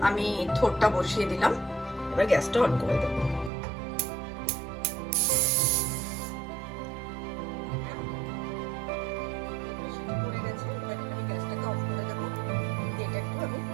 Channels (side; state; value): left; drops out; at 3.5 s